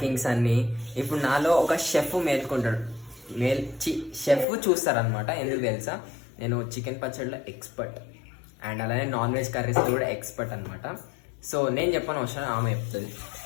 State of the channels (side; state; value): right; drops out; at 4.5 s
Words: అన్ని. ఇప్పుడు నాలో ఒక షెఫ్ మేల్కొంటాడు. షెఫ్ చూస్తారనమాట. ఎందుకు తెలుసా, నేను చికెన్ పచ్చడిలో ఎక్స్పర్ట్ అండ్ అలానే నాన్ వెజ్ కర్రీస్లో కూడా ఎక్స్పర్ట్ అనమాట. సో నేను చెప్పని అవసరం ఆమె చెప్తుంది.